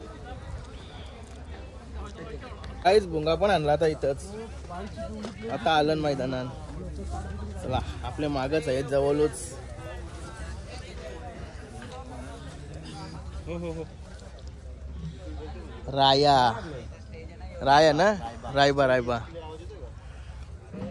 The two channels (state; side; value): identical; both; correlation 1.00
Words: काहीच भुंगा पण आणला आता इथंच. आता आलं मैदानात. चला आपले मागच आहेत जवळच. राया ना रायबा